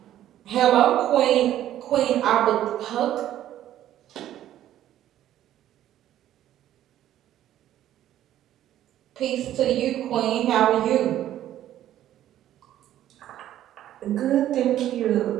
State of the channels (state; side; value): quieter; left; 12.3 dB